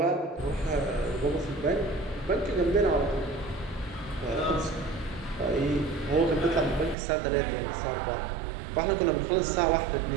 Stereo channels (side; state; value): left; drops out; at 7.0 s